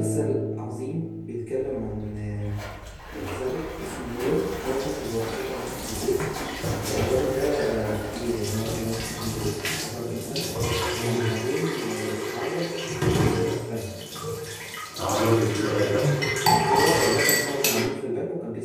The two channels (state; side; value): identical; both; correlation 1.00